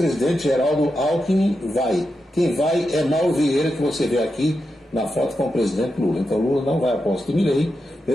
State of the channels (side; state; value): both; normal; correlation 0.87